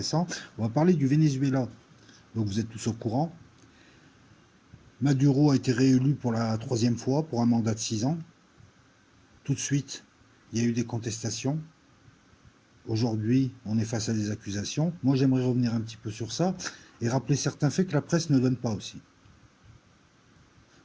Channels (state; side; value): identical; both; correlation 1.00